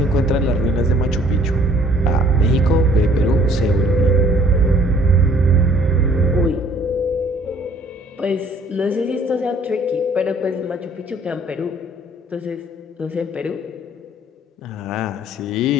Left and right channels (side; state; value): both; normal; correlation 0.58